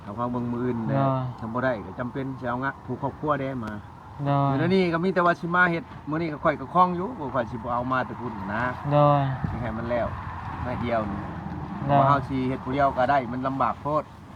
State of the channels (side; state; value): both; identical; correlation 1.00